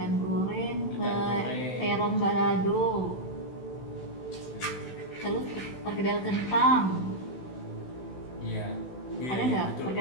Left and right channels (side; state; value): right; late; 16 ms